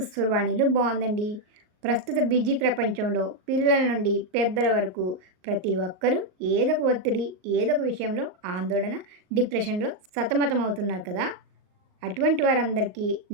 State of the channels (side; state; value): left; late; 38 ms